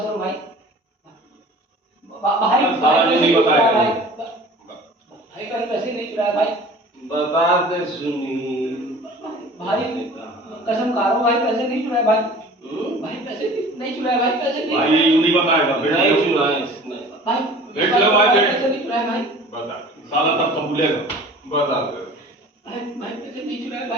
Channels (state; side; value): normal; both; correlation 0.44